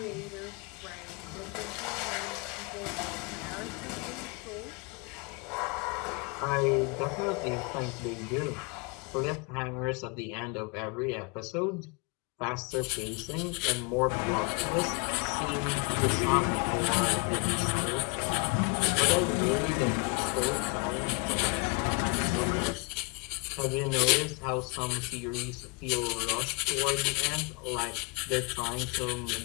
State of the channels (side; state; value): right; quieter; 30.1 dB